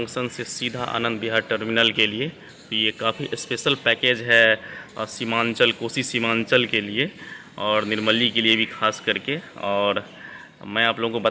से सीधा आनंद विहार टर्मिनल के लिए। तो ये काफ़ी स्पेशल पैकेज है सीमांचल, कोसी सीमांचल के लिए और निर्मली के लिए भी खास करके। और मैं आप लोगों को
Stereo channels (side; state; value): both; identical; correlation 1.00